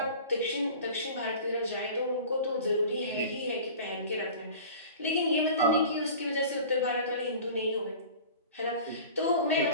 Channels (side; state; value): both; inverted; correlation -0.40